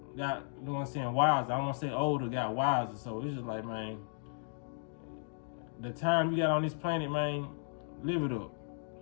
know what I'm saying, wiser. I don't want to say older, got wiser. So it's just like, man, the time you got on this planet, man, live it up.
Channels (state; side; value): silent; right; digital silence